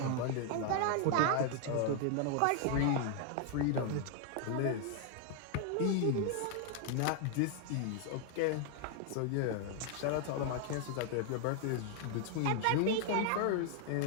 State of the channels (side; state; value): both; different; correlation 0.00